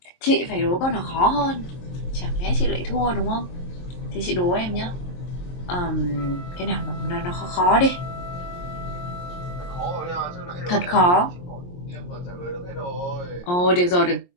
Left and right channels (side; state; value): right; late; 23 ms